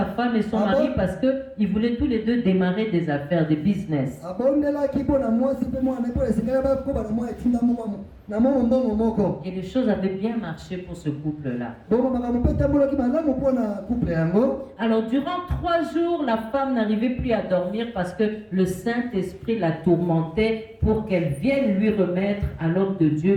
femme et son mari parce qu'ils voulaient tous les deux démarrer des affaires, des business. Et les choses avaient bien marché pour ce couple-là. Alors durant 3 jours, la femme n'arrivait plus à dormir parce que le Saint-Esprit la tourmentait pour qu'elle vienne lui remettre à l'homme de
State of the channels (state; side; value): identical; both; correlation 1.00